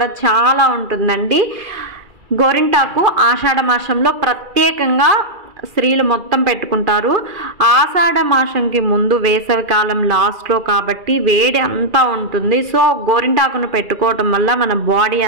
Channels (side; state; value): left; late; 2.3 ms